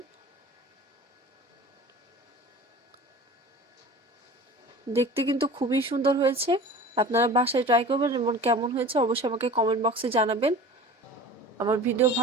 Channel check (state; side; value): normal; both; correlation 0.39